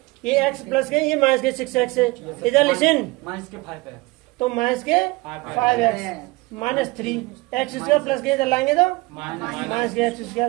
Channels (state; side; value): quieter; left; 22.9 dB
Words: ये x प्लस के, ये माइनस के 6x है। इधर लिसन, माइनस के 5 है तो माइनस के 5x minus 3x square, plus के इधर लाएंगे तो माइनस के x स्क्वायर,